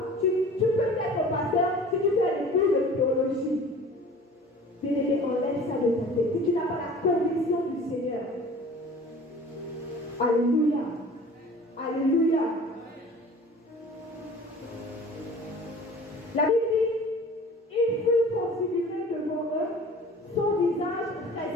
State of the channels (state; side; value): normal; both; correlation 0.44